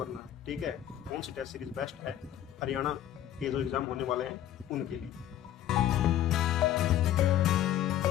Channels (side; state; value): right; quieter; 11.9 dB